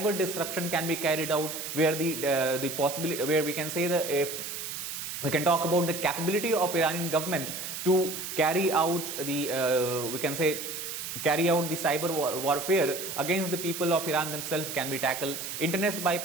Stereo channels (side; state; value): right; noise; hiss, 6 dB below the sound